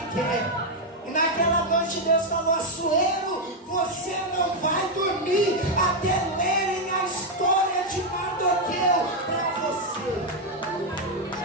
quer. E naquela noite Deus falou: Assuero, você não vai dormir até lerem a história de Mardoqueu para você.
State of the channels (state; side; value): normal; both; correlation 0.01